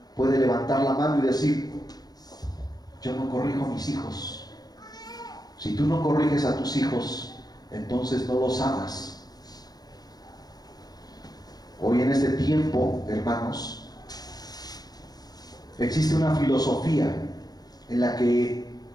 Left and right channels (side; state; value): right; late; 0.19 ms